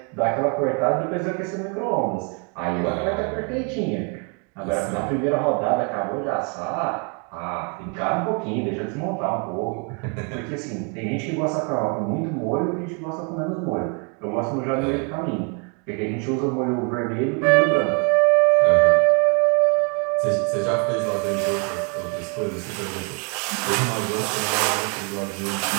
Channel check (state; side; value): quieter; left; 36.4 dB